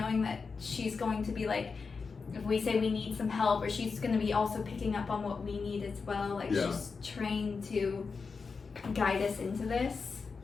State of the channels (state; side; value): quieter; right; 4.9 dB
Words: that she's going to be like, if we say we need some help, or she's going to be also picking up on what we need as well. Like she's trained to guide us into this.